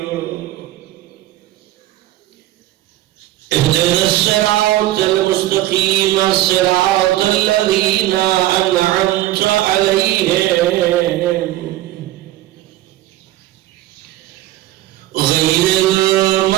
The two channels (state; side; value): quieter; left; 15.3 dB